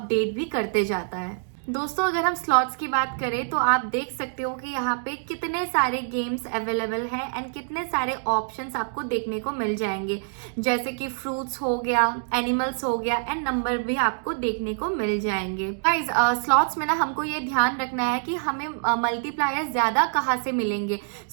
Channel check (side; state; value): left; silent; digital silence